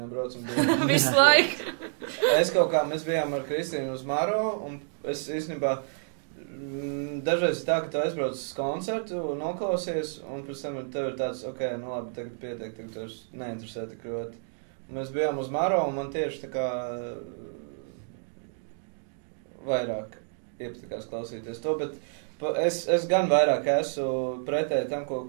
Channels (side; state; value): left; silent; digital silence